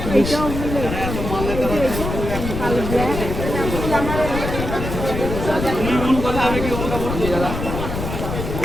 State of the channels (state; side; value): noise; left; rumble, 5 dB below the sound